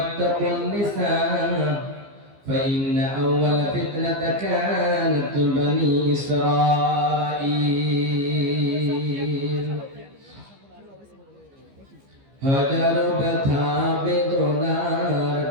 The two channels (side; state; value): left; late; 15 ms